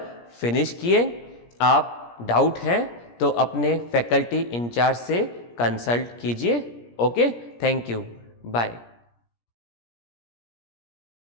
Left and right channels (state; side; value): late; right; 17 ms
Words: फिनिश किए. आप डाउट हैं तो अपने फैकल्टी इंचार्ज से कंसल्ट कीजिए. Okay, thank you, bye.